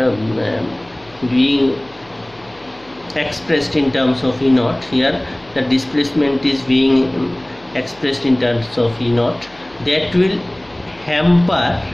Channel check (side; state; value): left; noise; hum, 27 dB below the sound